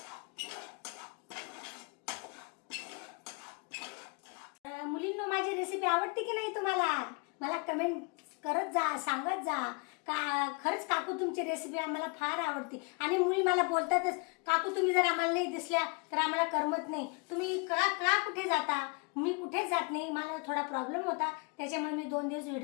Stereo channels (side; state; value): right; quieter; 33.0 dB